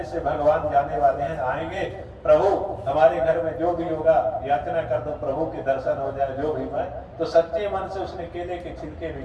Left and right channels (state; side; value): identical; both; correlation 1.00